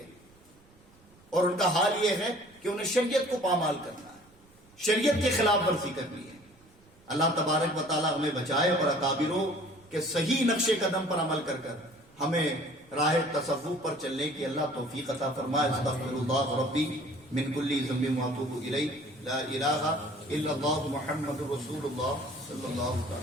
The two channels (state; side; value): noise; right; rumble, 28 dB below the sound